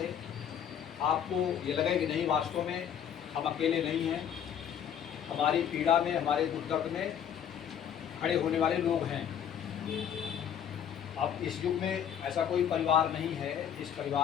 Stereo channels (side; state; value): right; quieter; 9.0 dB